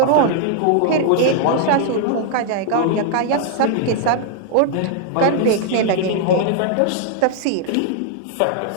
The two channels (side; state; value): both; different; correlation 0.00